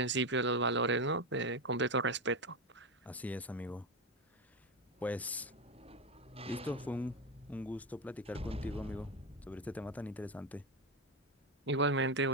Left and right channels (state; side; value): normal; both; correlation 0.13